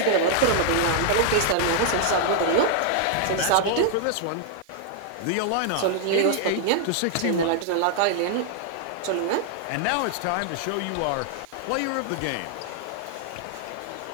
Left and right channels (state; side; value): different; both; correlation 0.00